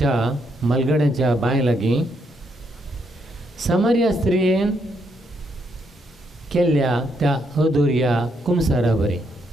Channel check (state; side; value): normal; both; correlation 0.76